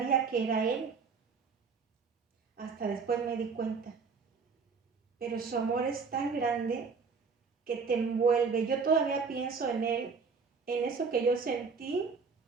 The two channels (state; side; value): quieter; left; 5.1 dB